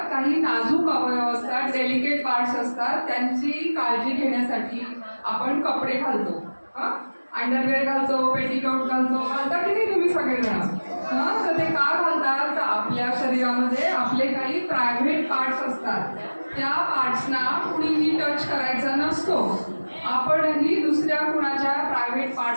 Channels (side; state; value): both; inverted; correlation -1.00